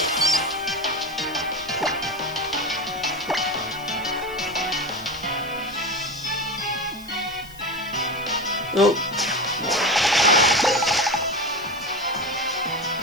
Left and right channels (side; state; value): left; noise; hiss, 21 dB below the sound